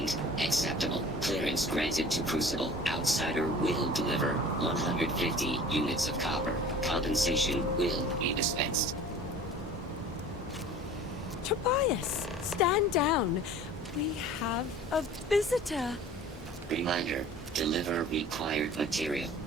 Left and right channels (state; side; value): normal; both; correlation 0.44